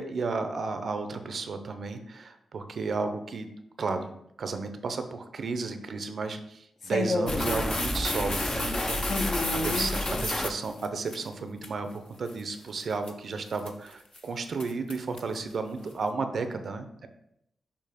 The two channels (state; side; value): normal; both; correlation 0.85